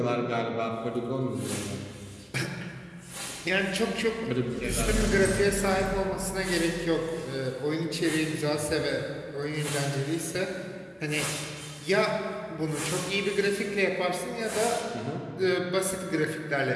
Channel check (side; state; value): both; identical; correlation 1.00